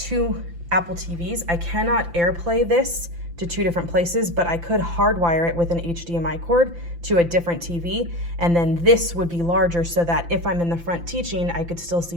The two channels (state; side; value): late; left; 5.9 ms